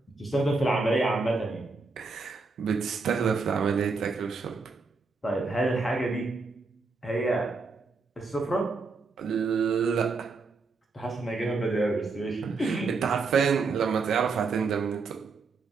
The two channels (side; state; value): left; quieter; 4.1 dB